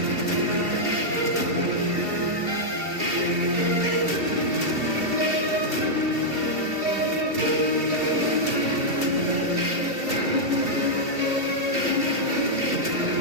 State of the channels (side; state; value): left; late; 2.7 ms